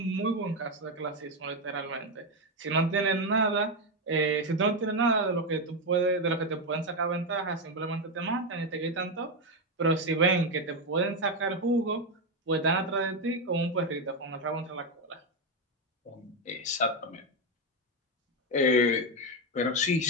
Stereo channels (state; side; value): normal; both; correlation 0.08